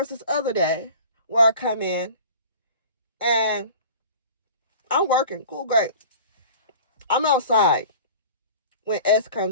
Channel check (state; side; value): inverted; both; correlation -0.41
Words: this other day where I come in and I'm working. Cool, great. I'm outside when S